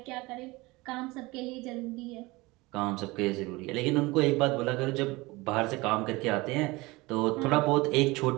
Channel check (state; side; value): quieter; left; 22.3 dB